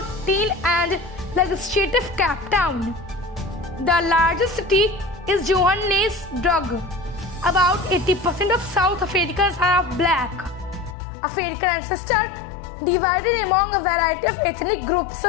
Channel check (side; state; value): right; drops out; at 11.0 s